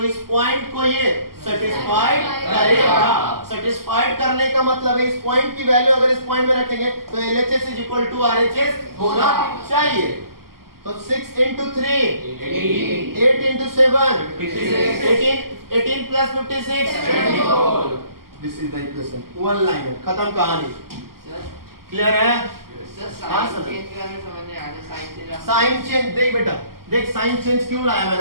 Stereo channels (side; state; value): left; late; 0.93 ms